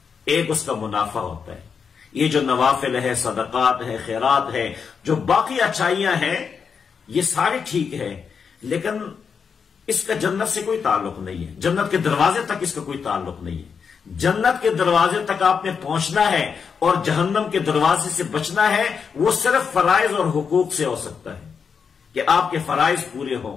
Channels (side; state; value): right; quieter; 6.2 dB